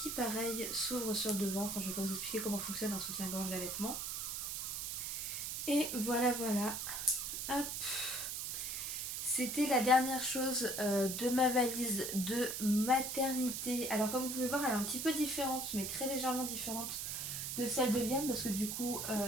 pareil s'ouvre sur le devant. Enfin je vais pas vous expliquer comment fonctionne un soutien-gorge d'allaitement. Et voilà. Hop. C'était la dernière chose de ma valise de maternité. Alors comme vous pouvez voir elle est un petit peu différente mais très légèrement différente de celle de Liam parce que du coup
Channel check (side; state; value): right; noise; hiss, 3 dB below the sound